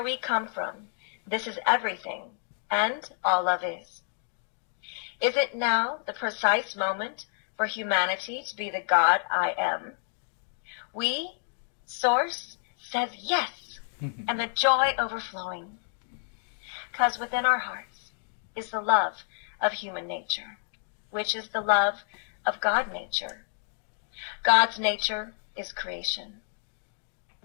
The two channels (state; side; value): silent; right; digital silence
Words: we come from, this is everything, and all love is. Is it now the precise moment for humanity to be the God I am? We, Source, says yes, and the joy overflowing. Because within our hearts is the love of human nature, which is the love of God nature. God's nature is creation.